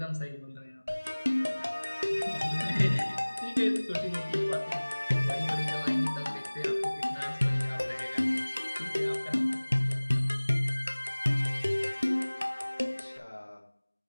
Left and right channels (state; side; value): inverted; both; correlation -1.00